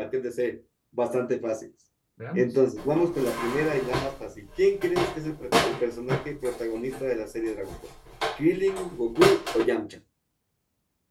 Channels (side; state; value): both; identical; correlation 1.00